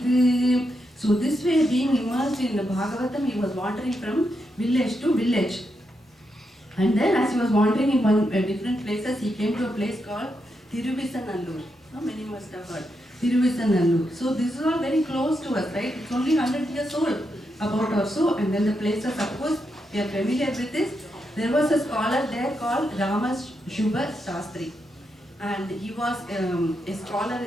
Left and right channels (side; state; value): both; normal; correlation 0.83